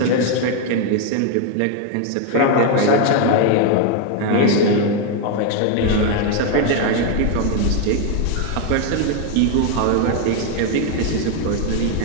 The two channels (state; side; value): different; both; correlation 0.01